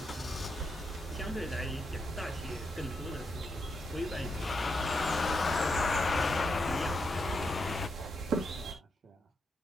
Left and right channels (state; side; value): normal; both; correlation 0.82